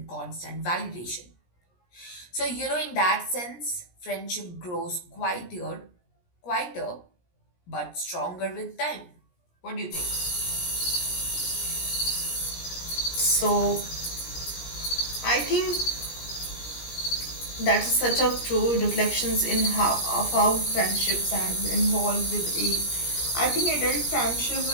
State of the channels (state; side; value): late; right; 17 ms